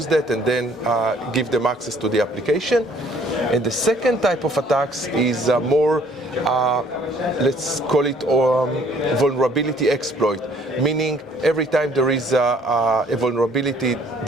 that and then give them access to the application. And the second type of attacks is more, let's call it vulnerability exploit, meaning every time there is a vulnerability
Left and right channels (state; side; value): normal; both; correlation 0.59